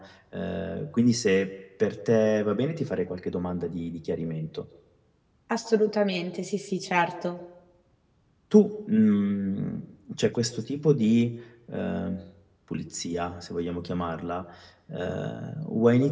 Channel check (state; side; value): identical; both; correlation 1.00